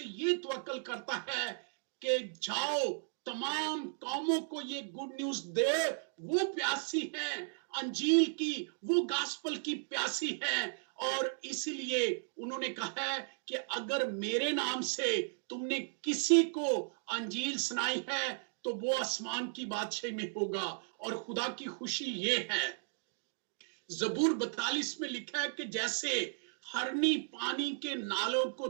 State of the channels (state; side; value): silent; left; digital silence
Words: ये तवक्कल करता है कि जाओ तमाम कौमों को ये गुड न्यूज दे। वो प्यासी है अंजील की, वो गास्पल की प्यासी है, और इसीलिए उन्होंने कहा है कि अगर मेरे नाम से तुमने किसी को अंजील सुनाई है तो वो आसमान की बादशाही में होगा। और खुदा की खुशी ये है, जबूर 42 में लिखा है कि जैसे हरनी पानी के नालों को